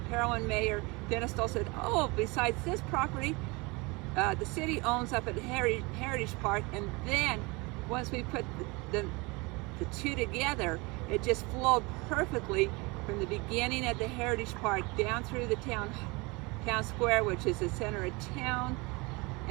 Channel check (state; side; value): quieter; left; 26.0 dB